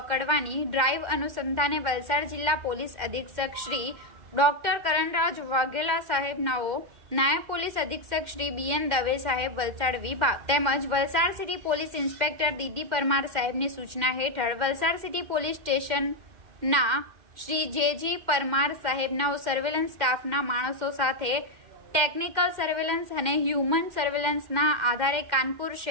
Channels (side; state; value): left; late; 2.1 ms